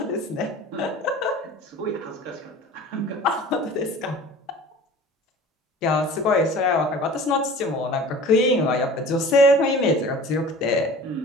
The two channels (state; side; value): normal; both; correlation 0.42